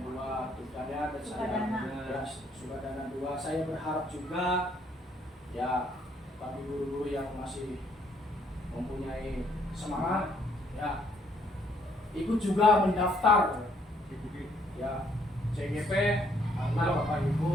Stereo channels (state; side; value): normal; both; correlation 0.68